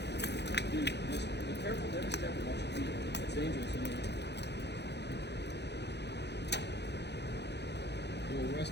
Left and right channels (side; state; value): right; late; 0.50 ms